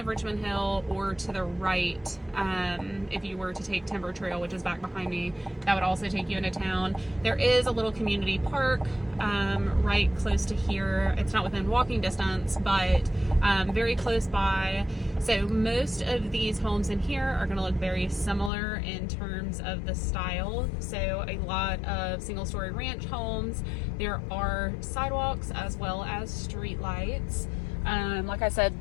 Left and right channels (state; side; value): drops out; right; at 18.5 s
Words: Richmond Hill, or to the right, if you were to take Timber Trail, which is back behind me, that would also take you into town. There is a little community park right close to here. It's not within walking distance, but very close by. So most of these homes in here are going to look very similar in terms of the style. So a lot of single-story ranch homes. There are sidewalks as well as street lights. Like I said,